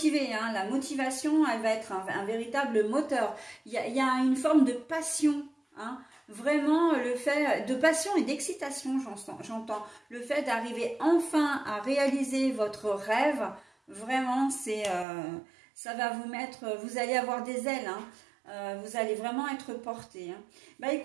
hein. La motivation, elle va être un véritable moteur. Il y a une forme de passion, hein. Vraiment, le fait de passion et d'excitation, j'entends. Le fait d'arriver enfin à réaliser votre rêve, vraiment, ça va vous mettre, vous allez avoir des ailes, hein. Vous allez vraiment être porté, hein.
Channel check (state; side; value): drops out; left; at 15.1 s